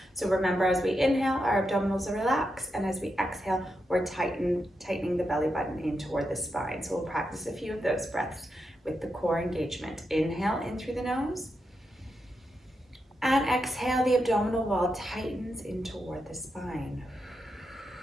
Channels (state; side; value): normal; both; correlation 0.86